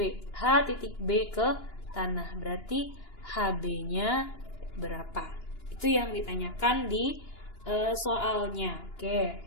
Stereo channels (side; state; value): right; late; 2.9 ms